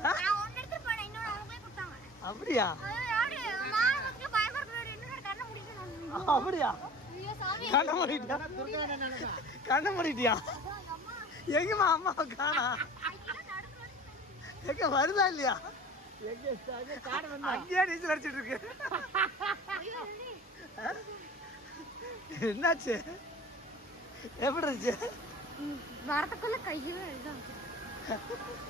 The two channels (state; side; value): normal; both; correlation 0.41